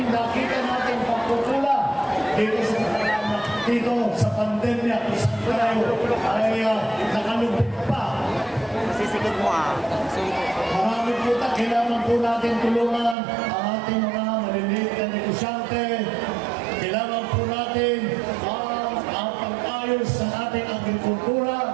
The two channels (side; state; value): left; drops out; at 13.2 s